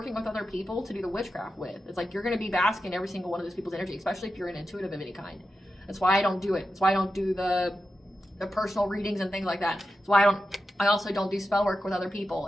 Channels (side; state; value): both; normal; correlation 0.90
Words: with other people to do the witchcraft with. It's like you're going to be basking in every single one of those people's energy, especially if you're an intuitive of any kind. That's why I don't do it. That's why I don't do the personal readings and things like that. That's why I also don't do spell work with other people.